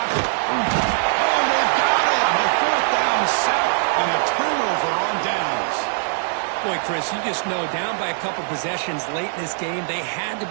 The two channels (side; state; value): left; silent; digital silence